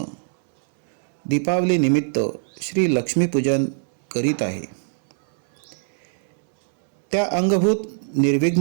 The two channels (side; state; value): left; silent; 64 dB below the other